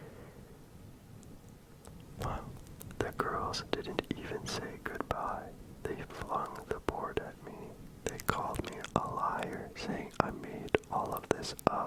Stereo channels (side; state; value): both; identical; correlation 1.00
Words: Well, the girls didn't even say goodbye. They flung the board at me. They called me a liar, saying I made all of this